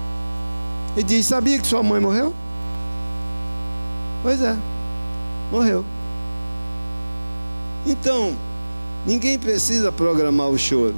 E diz: sabia que sua mãe morreu? Pois é, morreu. Então, ninguém precisa programar o choro,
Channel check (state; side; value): inverted; both; correlation -1.00